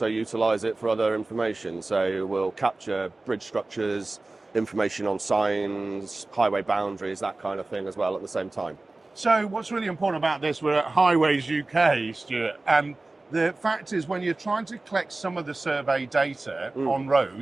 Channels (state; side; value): quieter; left; 3.1 dB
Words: utilise it for other information. So we'll capture bridge structures, information on signs, highway boundaries, that kind of thing as well at the same time. So what's really important about this, we're at Highways UK, Stuart, and the fact is when you're trying to collect some of the survey data on